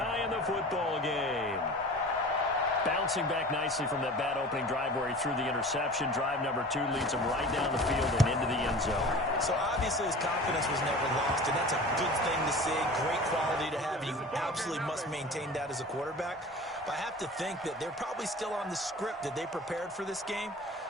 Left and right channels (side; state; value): both; normal; correlation 0.39